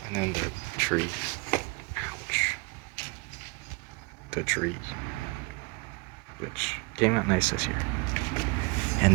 And then the tree. Ouch. The tree, which came out nice this year.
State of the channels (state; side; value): quieter; left; 29.4 dB